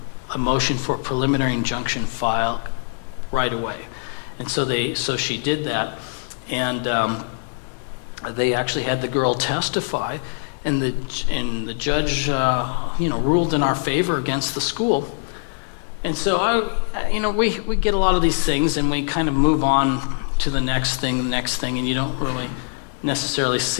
a motion for a preliminary injunction filed right away. And so she did that, and they actually had the girl testify, and the judge ruled in our favor against the school. And so we get a lot of these things, and we kind of move on to the next thing, and you don't really necessarily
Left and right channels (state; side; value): silent; right; digital silence